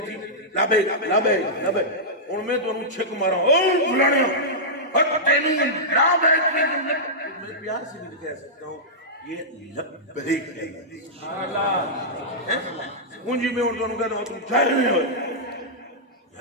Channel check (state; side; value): normal; both; correlation -0.13